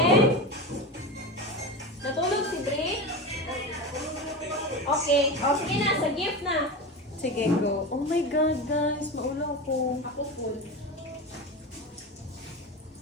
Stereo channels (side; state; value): both; normal; correlation 0.24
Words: Natulog si Brie? Okay. O, sige na. Sa gift na. Sige, go. Oh my God, guys. Maulaw ko. Ako full.